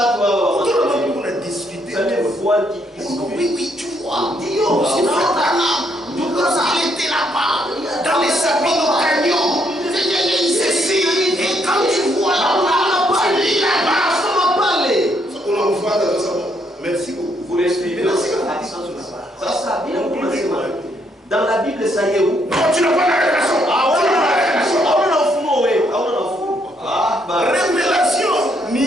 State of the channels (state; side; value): normal; both; correlation 0.73